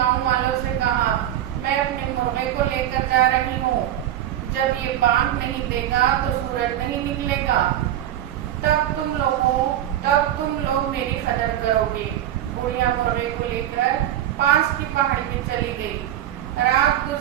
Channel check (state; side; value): quieter; left; 12.1 dB